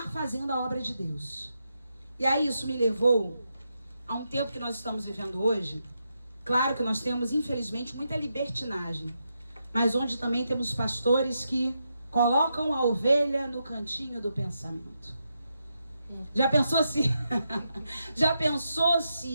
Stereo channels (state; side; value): inverted; both; correlation -0.84